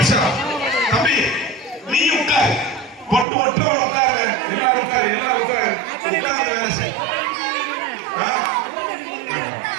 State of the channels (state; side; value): drops out; left; at 3.2 s